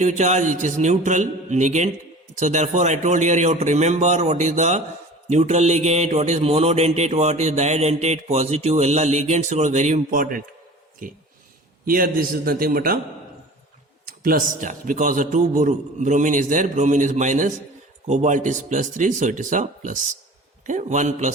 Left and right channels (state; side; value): normal; both; correlation 0.41